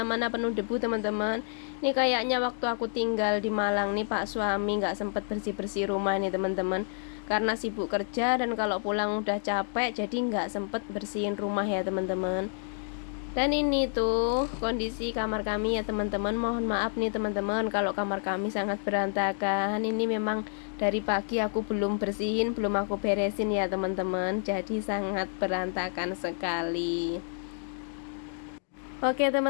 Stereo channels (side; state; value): right; silent; digital silence